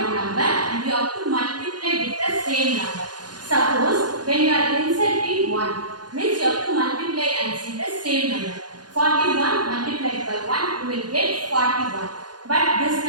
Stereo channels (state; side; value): late; left; 0.70 ms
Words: number and we have to multiply with the same number. Suppose, when you are inserting 1, means you have to multiply and see the same number. 41 multiplied by 1, you will get 41. But this